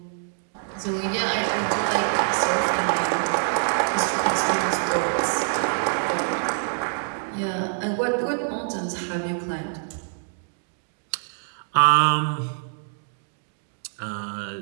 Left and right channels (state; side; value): silent; left; digital silence